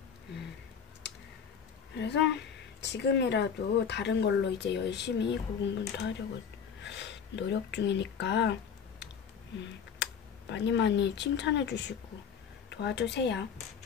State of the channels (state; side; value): quieter; right; 7.1 dB